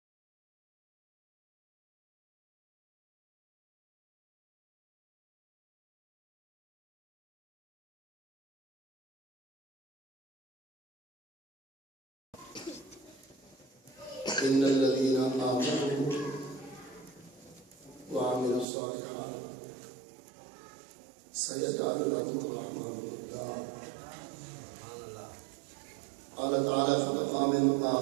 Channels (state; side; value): drops out; left; at 18.7 s